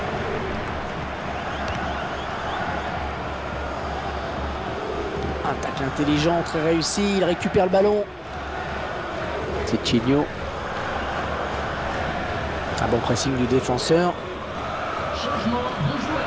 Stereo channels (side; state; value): both; identical; correlation 1.00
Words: Un tacle intelligent, très réussi, il récupère le ballon. C'est Chigno. Un bon pressing du défenseur.